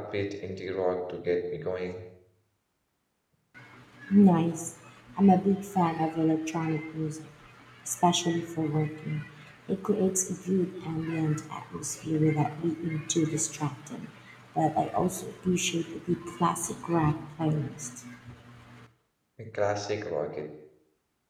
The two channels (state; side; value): identical; both; correlation 1.00